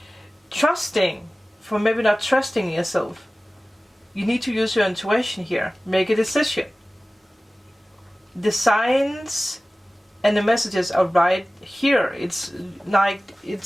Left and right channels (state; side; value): normal; both; correlation 0.97